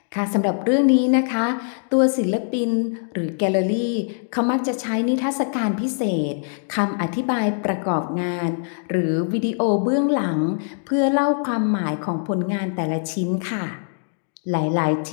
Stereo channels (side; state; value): right; silent; digital silence